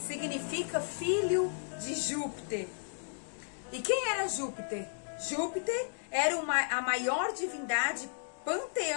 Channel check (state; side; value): silent; right; digital silence